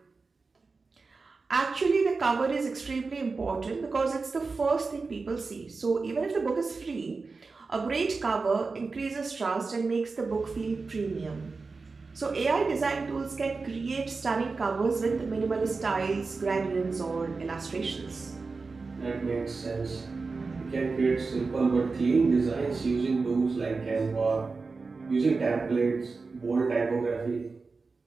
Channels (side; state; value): left; quieter; 4.2 dB